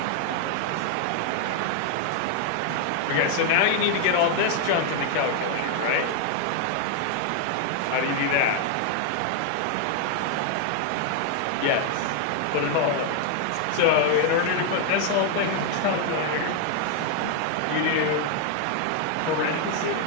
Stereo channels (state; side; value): different; both; correlation 0.00